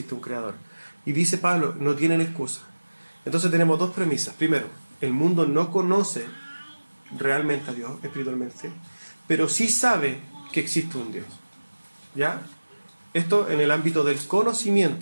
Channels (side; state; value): both; inverted; correlation -1.00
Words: un creador. Y dice Pablo, no tienen excusa. Entonces tenemos dos premisas. Primero, el mundo no conoce realmente a Dios espiritualmente, pero sí sabe que existe un Dios. ¿Ya? Esto en el ámbito del